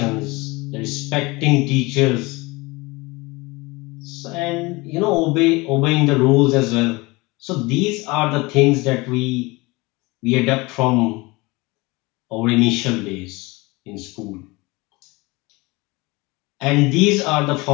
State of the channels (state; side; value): quieter; right; 23.8 dB